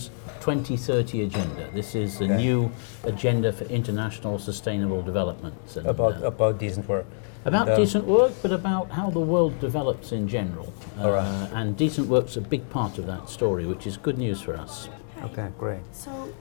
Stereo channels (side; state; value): right; silent; digital silence